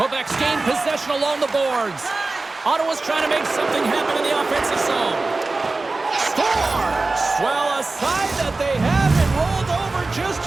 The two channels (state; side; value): quieter; left; 3.4 dB